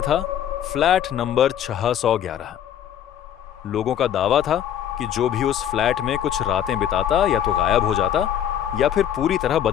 था फ्लैट नंबर 611। लोगों का दावा था कि जो भी उस फ्लैट में कुछ रातें बिताता या तो गायब हो जाता या फिर पूरी तरह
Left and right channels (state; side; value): quieter; right; 10.1 dB